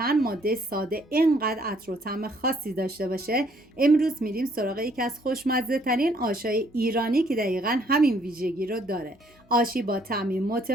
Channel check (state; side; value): normal; both; correlation 0.65